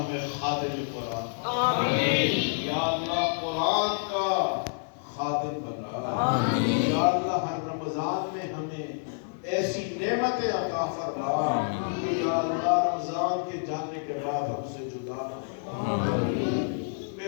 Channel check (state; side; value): silent; right; digital silence